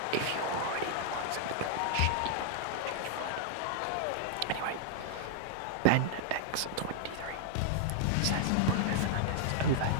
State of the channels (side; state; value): both; different; correlation -0.01